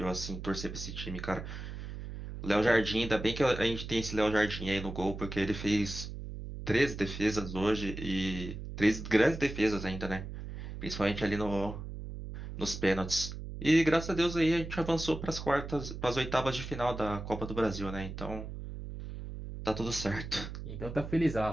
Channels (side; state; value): right; noise; hum, 9 dB below the sound